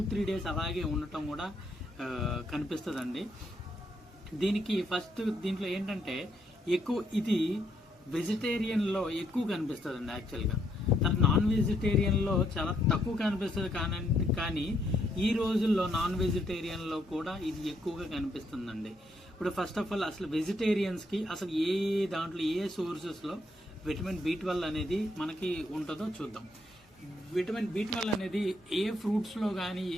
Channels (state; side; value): normal; both; correlation 0.74